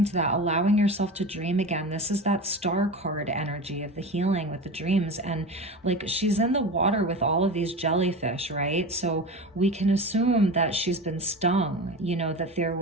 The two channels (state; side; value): normal; both; correlation 0.28